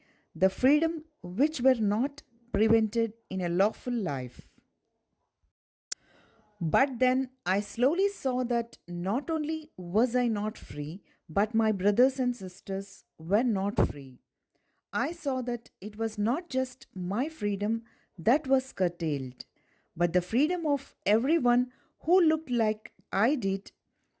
the freedom which were not prevented in a lawful life. But then I slowly saw that not only was I not free, but my brothers and sisters were not free. I saw that it was not just my freedom that was curtailed, but the freedom of everyone who looked like I did.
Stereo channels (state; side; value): identical; both; correlation 1.00